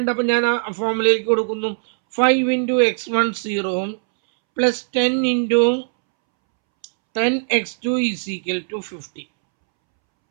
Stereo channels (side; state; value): left; silent; 66 dB below the other